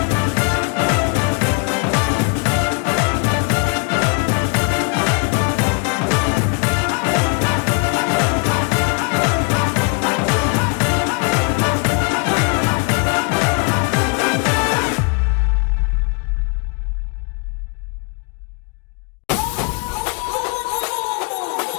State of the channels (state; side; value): quieter; right; 34.7 dB